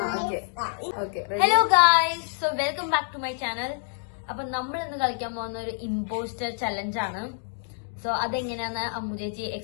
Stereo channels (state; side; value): silent; right; digital silence